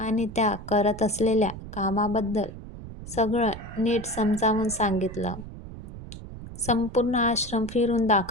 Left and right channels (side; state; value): right; noise; rumble, 12 dB below the sound